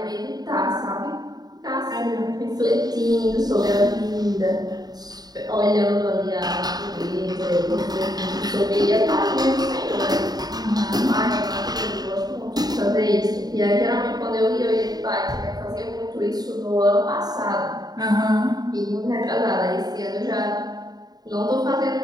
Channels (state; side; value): late; left; 0.19 ms